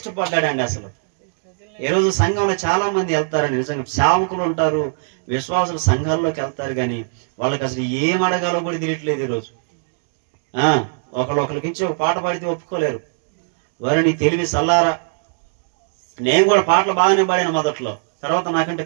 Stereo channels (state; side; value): silent; left; digital silence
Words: అసలు ఈరోజు సంఘంలో చాలా మంది వెళ్తారండి, నిజంగా సేవకులు ఉంటారు, విశ్వాసులు సంఘాల్లోకి వెళ్తారు, కానీ వాళ్ళకి అసలు ఏం అడగాలో కూడా తెలియట్లేదు. ఈరోజు ఒకళ్ళకి ఇచ్చి ఒక పాట పాడితే ఒప్పుకోలేరు. వారు నీ తెలివి సల్లారా. నేను కూడా పాటలు బాగానే పాడాను మొదట్లో, తర్వాత నాకంటే